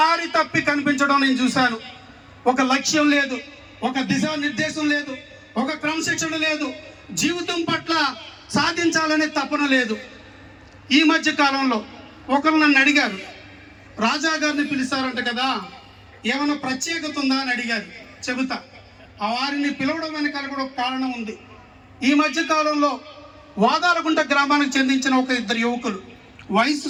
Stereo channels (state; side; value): identical; both; correlation 1.00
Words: తప్పి కనిపించడం నేను చూశాను. ఒక లక్ష్యం లేదు, ఒక దిశానిర్దేశం లేదు, ఒక క్రమశిక్షణ లేదు, జీవితం పట్ల సాధించాలనే తపన లేదు. ఈ మధ్య కాలంలో ఒకరు నన్ను అడిగారు, రాజా గారిని పిలిచారంట కదా, ఏమైనా ప్రత్యేకత ఉందా అని అడిగారు. చెబుతా. ఆ వారిని పిలవడం వెనకాల కూడా ఒక కారణం ఉంది. ఈ మధ్య కాలంలో వాదాలగుంట గ్రామానికి చెందించిన ఒక ఇద్దరు యువకులు, వయసు